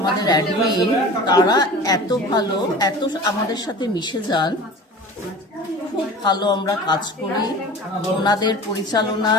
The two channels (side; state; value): both; normal; correlation 0.38